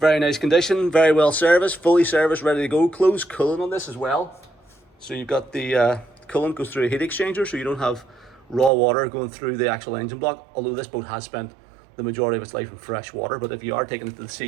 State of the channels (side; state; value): left; drops out; at 8.7 s